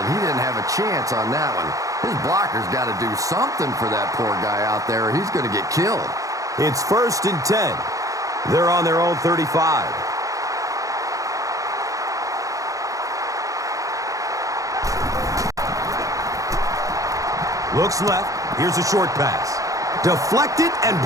He didn't have a chance on that one. His blocker's got to do something for that poor guy out there, or he's going to get killed. It's first and 10. They're on their own 35. Looks left. Here's a short pass. Deflected and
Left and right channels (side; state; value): left; late; 0.16 ms